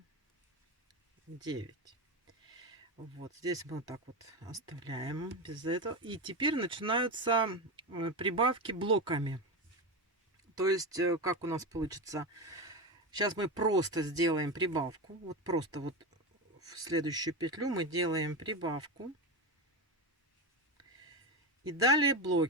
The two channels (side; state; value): both; normal; correlation 0.18